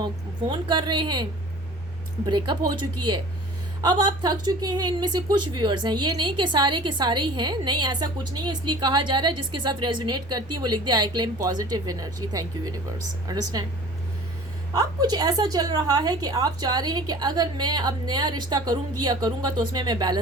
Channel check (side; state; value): both; normal; correlation 0.44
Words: फ़ोन कर रहे हैं, ब्रेकअप हो चुकी है। अब आप थक चुके हैं। इनमें से कुछ व्यूअर्स हैं, ये नहीं कि सारे के सारे ही हैं, नहीं ऐसा कुछ नहीं है, इसलिए कहा जा रहा है जिसके साथ रेजोनेट करती है वो लिख दे I claim positive energy, thank you universe, understand. अब कुछ ऐसा चल रहा है कि आप चाह रहे हैं कि अगर मैं अब नया रिश्ता करूंगी या करूंगा तो उसमें मैं